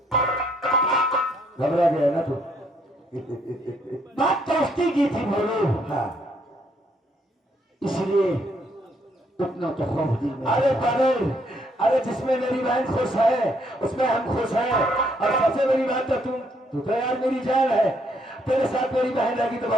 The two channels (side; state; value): both; normal; correlation 0.70